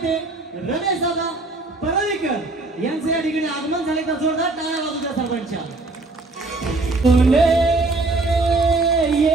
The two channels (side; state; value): left; quieter; 3.3 dB